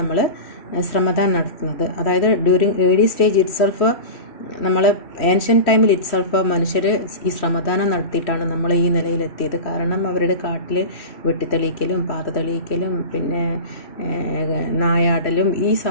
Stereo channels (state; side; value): late; right; 3.1 ms